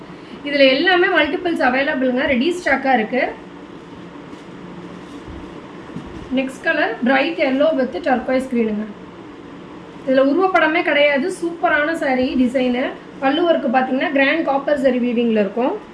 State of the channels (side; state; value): both; identical; correlation 1.00